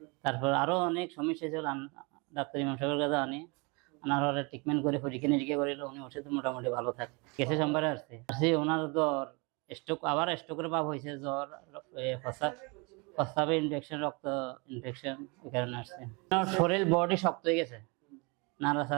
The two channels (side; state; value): left; quieter; 29.7 dB